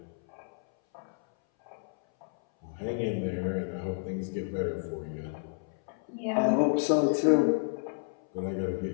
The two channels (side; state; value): right; silent; 57 dB below the other